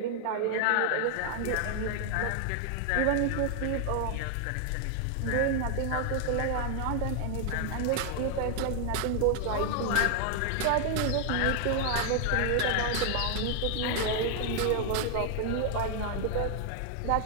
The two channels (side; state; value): both; different; correlation 0.00